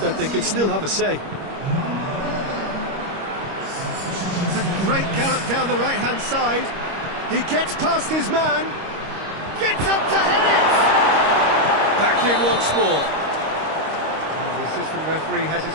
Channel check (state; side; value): late; left; 25 ms